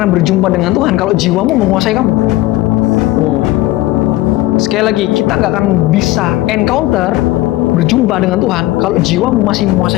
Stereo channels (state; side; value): quieter; right; 17.4 dB